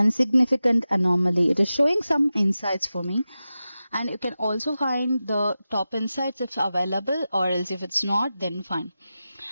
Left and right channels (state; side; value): inverted; both; correlation -0.93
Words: significant anomaly. It is showing some insights for me, and you can also find the top insights if available, or else if it's not, then fine.